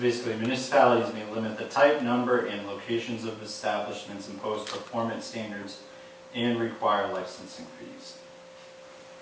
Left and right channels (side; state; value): both; identical; correlation 1.00